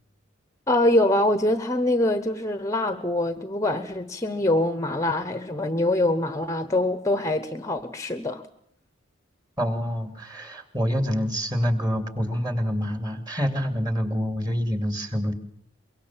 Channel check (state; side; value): normal; both; correlation 0.64